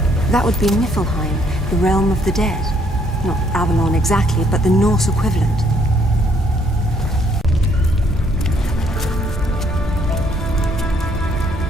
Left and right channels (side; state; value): both; normal; correlation 0.67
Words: That would be Niflheim, the realm of the dead. Not Avalon exactly, but the Norse equivalent.